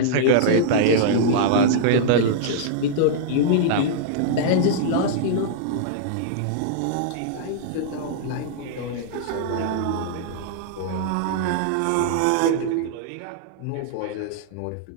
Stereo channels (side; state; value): both; different; correlation -0.01